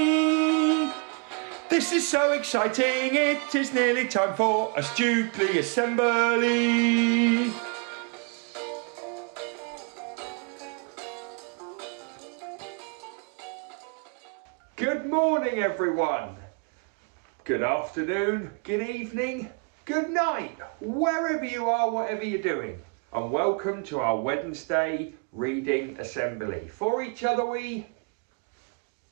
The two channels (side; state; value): left; quieter; 36.9 dB